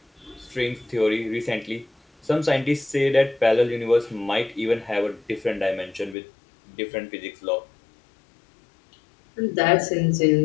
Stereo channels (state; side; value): drops out; right; at 6.2 s